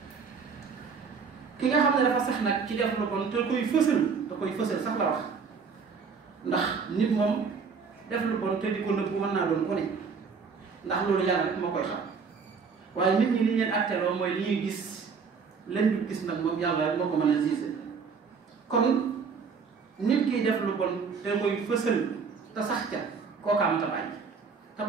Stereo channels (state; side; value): quieter; left; 5.5 dB